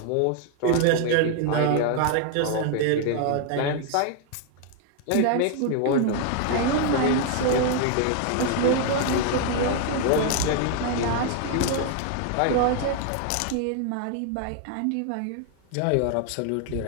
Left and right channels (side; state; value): both; different; correlation 0.00